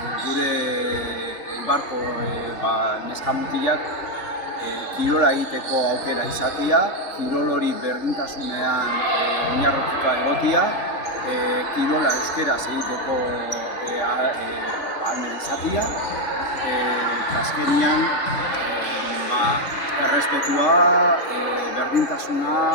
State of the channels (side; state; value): right; late; 4.0 ms